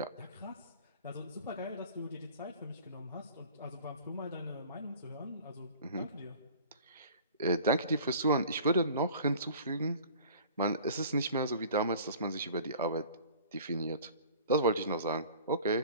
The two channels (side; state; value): both; inverted; correlation -0.45